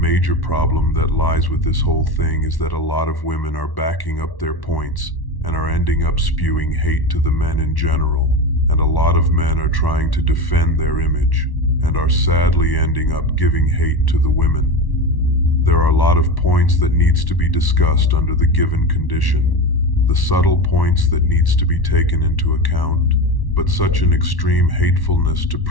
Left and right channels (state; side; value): late; right; 1.1 ms